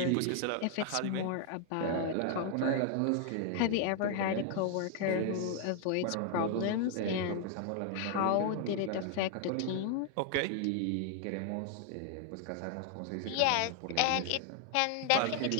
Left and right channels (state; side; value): different; both; correlation 0.00